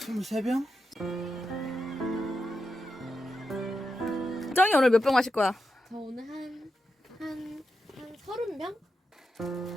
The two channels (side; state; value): both; normal; correlation 0.87